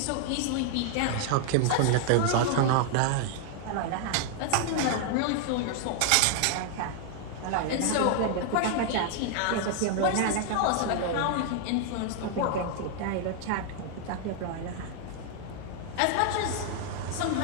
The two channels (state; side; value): different; both; correlation 0.00